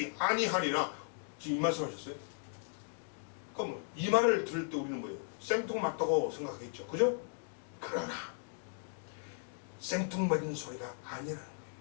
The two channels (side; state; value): right; silent; digital silence